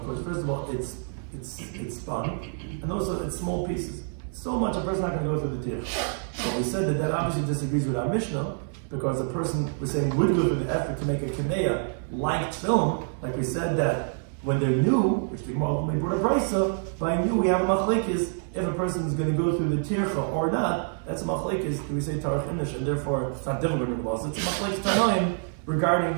because first of all, it's spun, and also it's small pieces. So much a person's not going to go through the tear. So we said that obviously disagrees with our Mishnah, because a person, we're saying, would go through the effort to make a kameya like film, like we said that when they're new, which the Gemara ultimately brought a brisa, by new we have a machlekes, if a person is going to go through the tircha or not, that's a machlekes, do we say tarach inish, and therefore it's not difficult in the laws, it's a machlekes tanoim regarding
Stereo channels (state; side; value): silent; left; 57 dB below the other